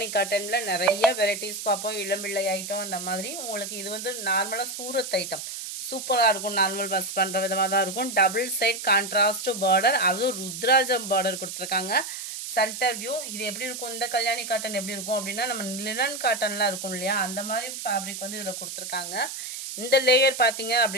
காட்டனில் நிறைய வெரைட்டிஸ் பார்ப்போம். இளம்பிள்ளை ஐட்டம் அந்த மாதிரி. உங்களுக்கு இது வந்து நார்மலாக சூரத் ஐட்டம் சூப்பராக இருக்கும். நார்மல் பஸ் பண்ணுற விதமாக தான் இருக்கும். டபுள் சைட் கான்ட்ராஸ்ட் பார்டர், அதுவும் ருத்ராஜம் பார்டர் கொடுத்துருக்காங்க. Centre view. இது எப்படி இருக்கும், இந்த கல்யாணி காட்டன் எப்படி இருக்கும் அப்படின்னா நம்ம லினன் காட்டன்லாம் இருக்கும் இல்லையா, அந்த மாதிரி ஃபேப்ரிக் வந்து இதில் கொடுத்துருக்காங்க. இந்த லேயர் பார்த்தீங்க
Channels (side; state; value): right; noise; hiss, 7 dB below the sound